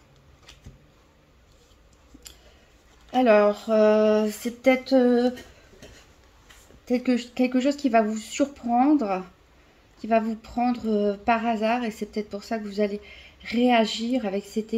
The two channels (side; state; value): both; identical; correlation 1.00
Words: Alors c'est peut-être quelque chose qui va vous surprendre, qui va vous prendre par hasard, et c'est peut-être pour ça que vous allez réagir avec cette